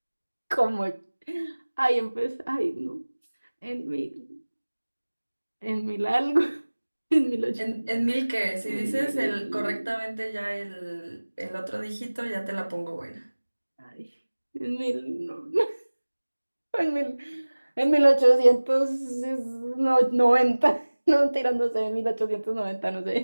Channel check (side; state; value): both; inverted; correlation -1.00